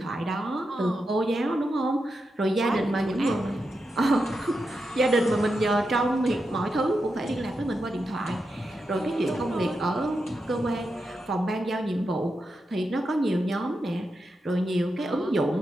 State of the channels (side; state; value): both; normal; correlation 0.87